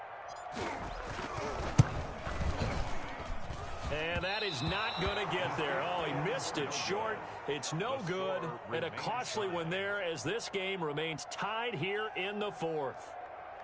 And And that is not going to get there. Oh, he missed it short. It's no good. And a costly one there as this game remains tied here in the fourth.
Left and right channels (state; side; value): identical; both; correlation 1.00